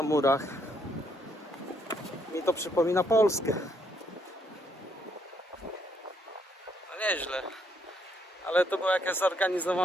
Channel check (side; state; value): both; normal; correlation 0.72